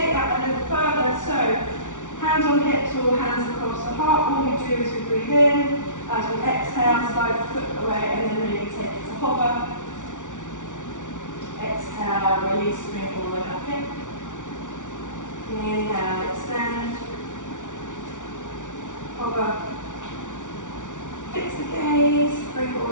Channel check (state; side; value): late; right; 0.87 ms